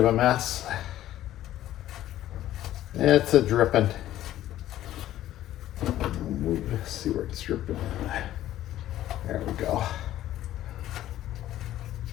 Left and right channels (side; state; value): right; quieter; 13.4 dB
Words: a mess. It's a dripping. Let's see where it's dripping. There we go.